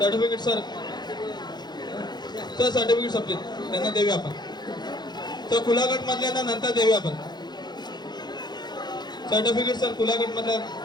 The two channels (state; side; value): late; right; 0.21 ms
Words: सर, तर सर्टिफिकेट संपले, त्यांना देऊया आपण. तर खुला गट मधल्या नंतर देऊया आपण सर्टिफिकेट. सर खुला गट मधल्या